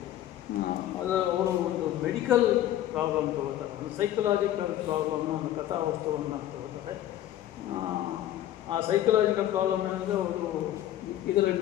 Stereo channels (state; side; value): quieter; right; 12.8 dB